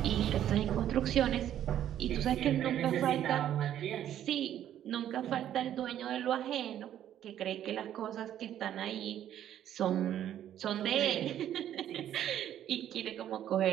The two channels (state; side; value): quieter; left; 11.1 dB